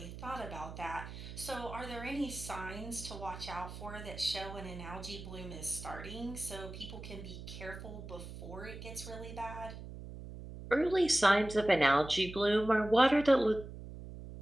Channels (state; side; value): noise; right; hum, 11 dB below the sound